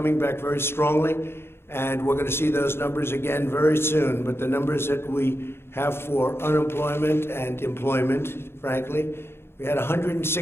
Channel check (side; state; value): right; late; 0.12 ms